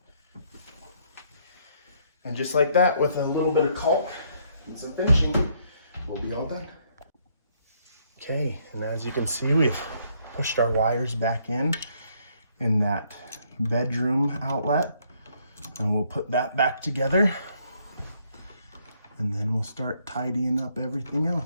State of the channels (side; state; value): both; inverted; correlation -0.69